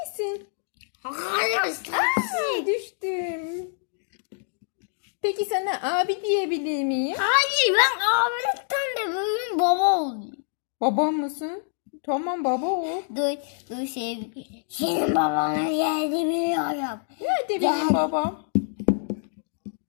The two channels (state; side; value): silent; right; digital silence